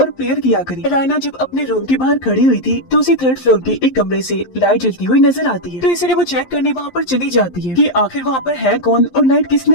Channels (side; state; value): right; late; 11 ms